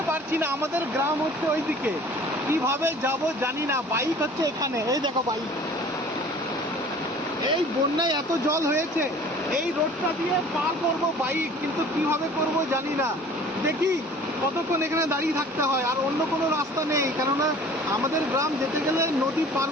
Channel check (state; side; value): normal; both; correlation 0.47